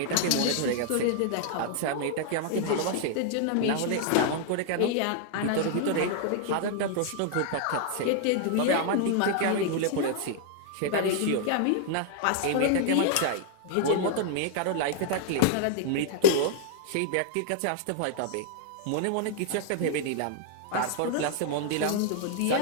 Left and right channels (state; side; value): different; both; correlation 0.00